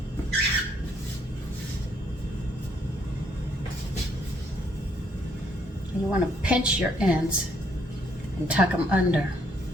You want to pinch your ends and tuck them under.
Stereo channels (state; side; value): normal; both; correlation 0.69